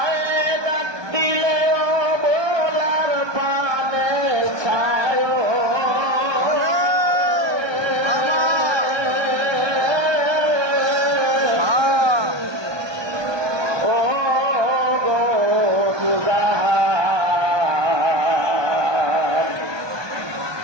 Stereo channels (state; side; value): late; left; 1.2 ms